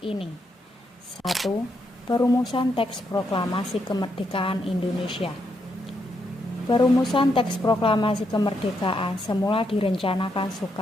ini. 1. Perumusan teks proklamasi kemerdekaan Indonesia. Perumusan teks proklamasi kemerdekaan semula direncanakan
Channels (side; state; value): both; normal; correlation 0.79